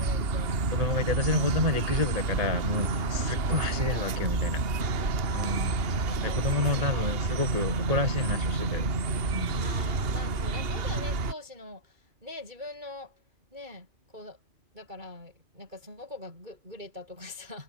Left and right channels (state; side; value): late; left; 2.8 ms